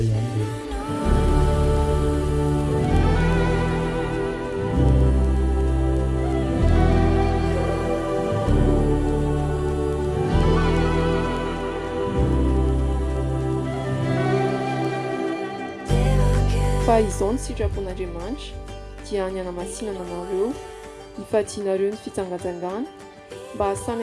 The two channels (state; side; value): identical; both; correlation 1.00